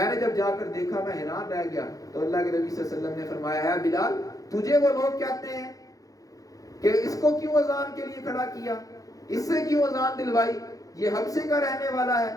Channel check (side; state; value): right; late; 0.17 ms